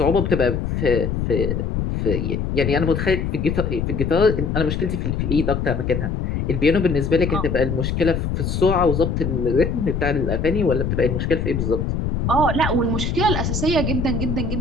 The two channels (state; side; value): noise; left; rumble, 1 dB below the sound